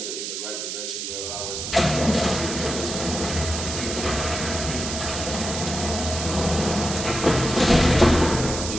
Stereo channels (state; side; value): noise; right; hiss, 5 dB below the sound